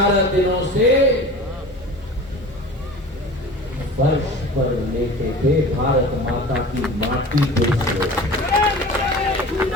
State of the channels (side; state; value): both; normal; correlation 0.38